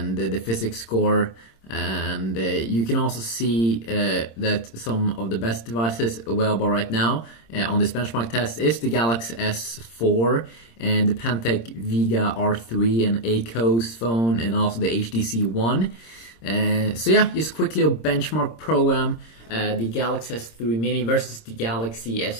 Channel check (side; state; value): right; late; 26 ms